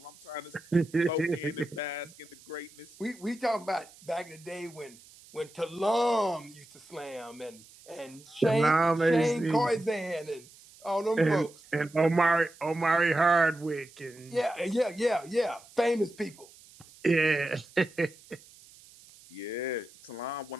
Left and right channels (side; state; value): right; noise; hiss, 23 dB below the sound